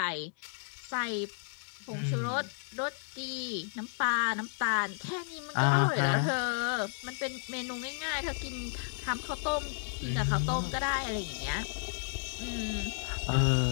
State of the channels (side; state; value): right; silent; 56 dB below the other